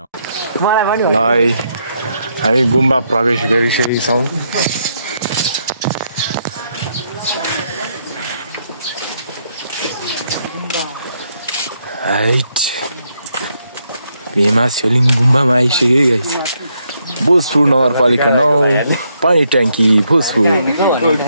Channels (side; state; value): both; inverted; correlation -0.77